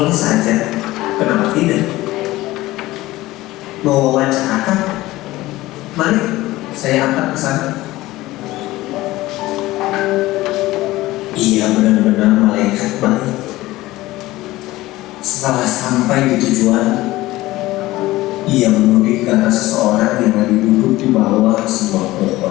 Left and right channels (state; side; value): quieter; right; 17.8 dB